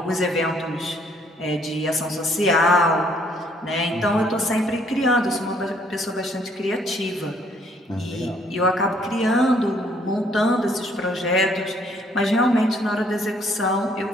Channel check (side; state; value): both; normal; correlation 0.65